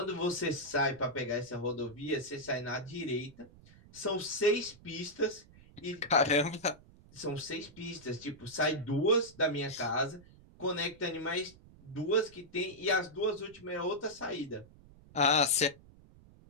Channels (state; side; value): noise; right; rumble, 23 dB below the sound